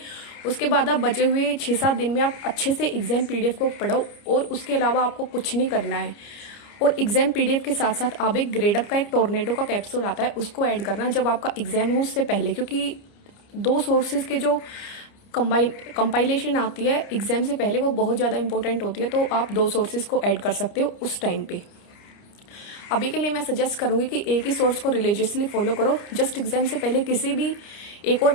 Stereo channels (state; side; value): late; right; 29 ms